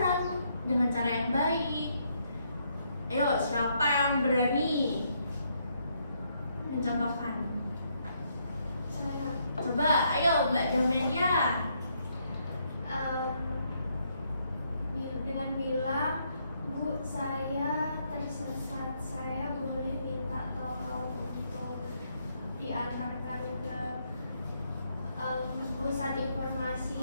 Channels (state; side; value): inverted; both; correlation -0.74